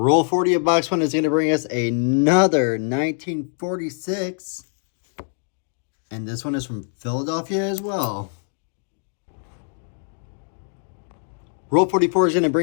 40 of box 1 is going to bring us another 1946. And this one is from Philadelphia as well. Roll 44 is going to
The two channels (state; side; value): silent; right; 63 dB below the other